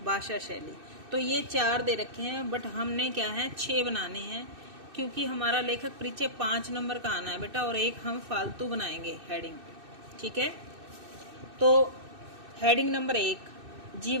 भाषा शैली। तो ये 4 दे रखे हैं, बट हमने क्या है 6 बनाने हैं, क्योंकि हमारा लेखक परिचय 5 नंबर का आना है बेटा, और एक हम फालतू बनाएंगे हेडिंग। ठीक है, तो हेडिंग नंबर 1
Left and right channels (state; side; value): late; left; 2.6 ms